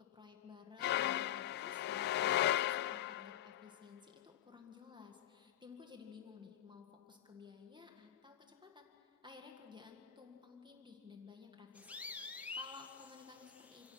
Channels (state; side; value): quieter; right; 11.8 dB